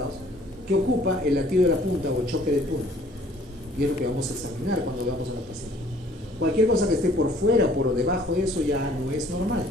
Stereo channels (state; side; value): normal; both; correlation 0.57